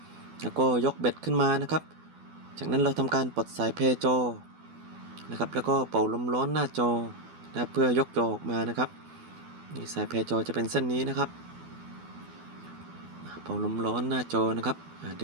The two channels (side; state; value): left; late; 12 ms